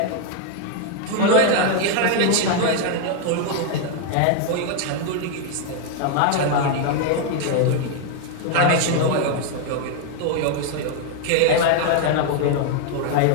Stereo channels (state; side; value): different; both; correlation 0.00